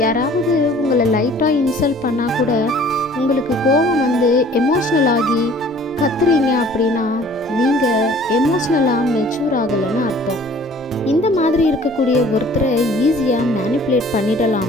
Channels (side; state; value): both; normal; correlation 0.52